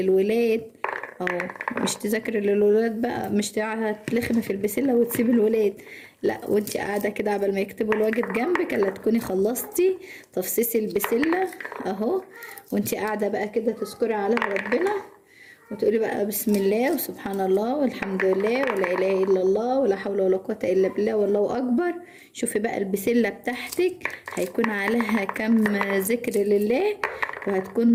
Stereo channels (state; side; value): identical; both; correlation 1.00